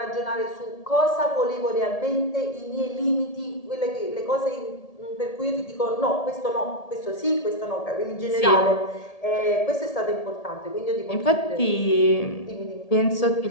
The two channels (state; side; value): late; right; 1.8 ms